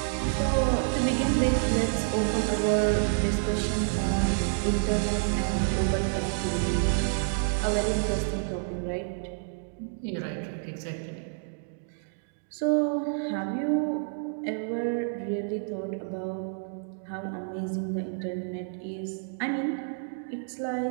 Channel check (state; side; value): silent; left; digital silence